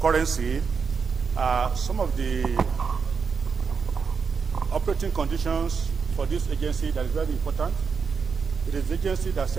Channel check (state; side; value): quieter; left; 5.6 dB